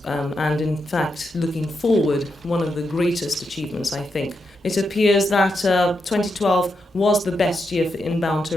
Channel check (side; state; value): both; normal; correlation 0.84